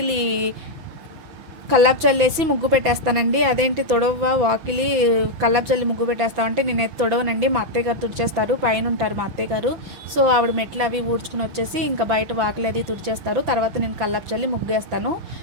కల్లాపు చల్లేసి ముగ్గు పెట్టేస్తానండి. అదేంటి తొడవ వాకిలి కల్లాపు చల్లి ముగ్గు పెట్టేస్తామంటే నేనైతే తొడవనండి. మా అత్తయ్య గారు తుడిచేస్తారు. పైన ఉంటారు మా అత్తయ్య గారు. సో ఆవిడ మెట్లు అవి ఊడ్చుకుని వచ్చేసి ఇంకా బయట వాకిలి అది తుడిచేస్తారు. తర్వాత నేను కల్లాపు చల్లి ముగ్గేస్తాను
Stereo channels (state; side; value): late; left; 5.9 ms